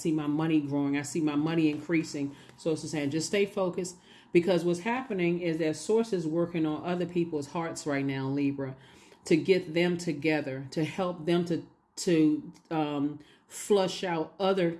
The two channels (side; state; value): both; identical; correlation 1.00